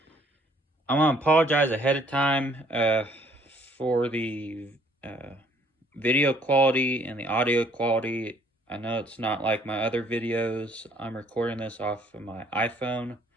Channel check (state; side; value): normal; both; correlation 0.62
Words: want to apologize ahead of time for the video quality and the audio quality. I know it's not like my other videos. I'm recording this off of my iPhone,